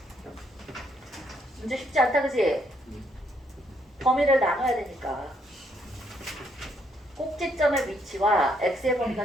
문제 쉽지 않다, 그치? 범위를 나눠야 되니까. 꼭지점의 위치와 x의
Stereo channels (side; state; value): both; normal; correlation 0.72